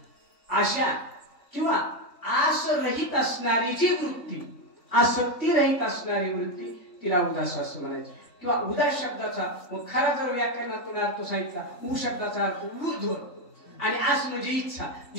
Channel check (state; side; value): late; right; 3.5 ms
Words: आशा किंवा आस रहित असणारी जी वृत्ती आसक्ती रहित असणारी वृत्ती तिला उदास असं म्हणायचं किंवा उदास शब्दाचा खरा जर व्याकरणातून अर्थ सांगितला उ शब्दाचा अर्थ ऊर्ध्व आणि आस म्हणजे इच्छा